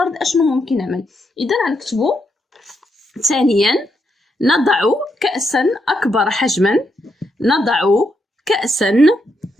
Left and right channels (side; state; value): both; normal; correlation 0.80